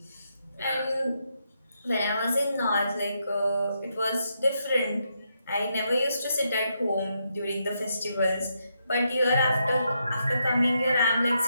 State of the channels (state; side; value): inverted; both; correlation -0.80